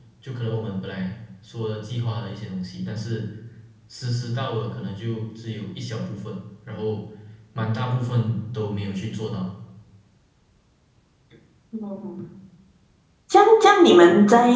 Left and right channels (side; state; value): both; identical; correlation 1.00